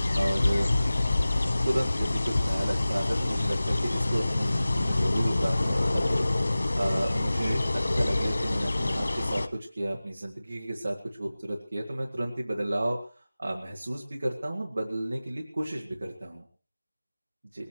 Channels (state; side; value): inverted; both; correlation -0.97